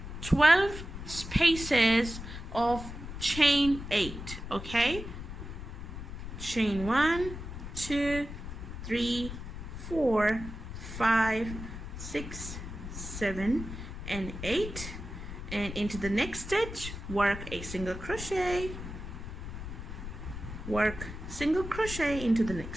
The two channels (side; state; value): left; noise; rumble, 9 dB below the sound